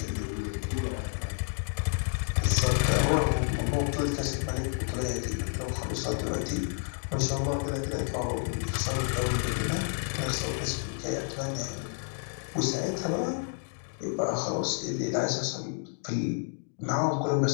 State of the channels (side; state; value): right; silent; 58 dB below the other